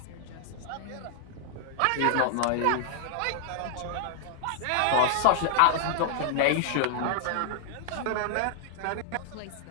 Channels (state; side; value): different; both; correlation 0.00